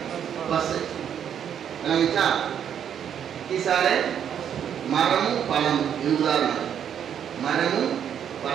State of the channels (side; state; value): left; quieter; 8.8 dB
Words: பசு. இத்திசாலே மரமும் பழமும். இது உதாரணம், மரமும்